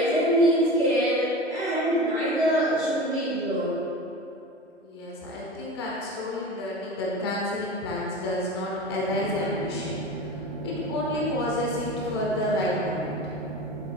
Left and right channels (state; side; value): normal; both; correlation 0.32